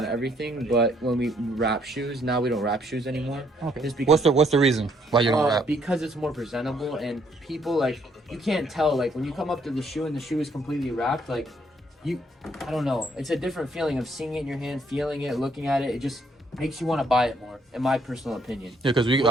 everything, but when we wrap shoes, now we don't wrap shoes anymore. Okay. Just because, What's the reason why you don't wrap? because it's more presentable, and people, like, you can't tell, like, when you come up to the shoe and the shoe is completely wrapped, like, I don't know. It's a different feeling of seeing it in your hand, feeling it, looking at it. It just makes you want to buy it more, in my personal opinion. Yeah, because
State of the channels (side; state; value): both; normal; correlation 0.68